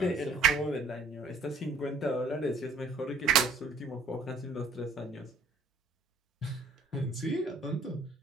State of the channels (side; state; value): left; quieter; 3.3 dB